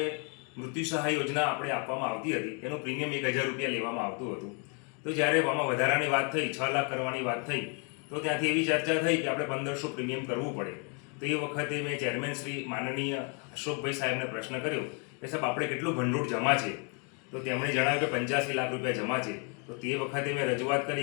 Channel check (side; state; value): right; quieter; 36.8 dB